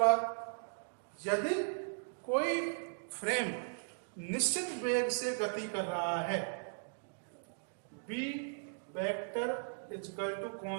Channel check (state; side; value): silent; left; digital silence